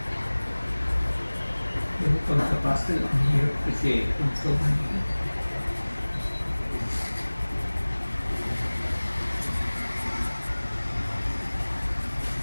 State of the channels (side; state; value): both; inverted; correlation -1.00